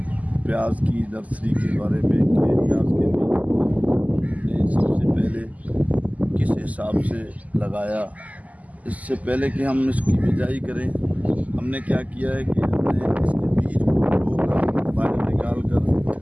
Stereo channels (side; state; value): left; late; 0.075 ms